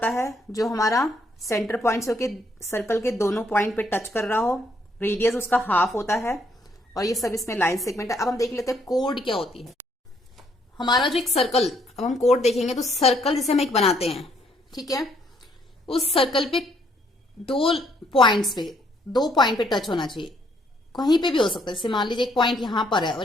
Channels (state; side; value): normal; both; correlation 0.69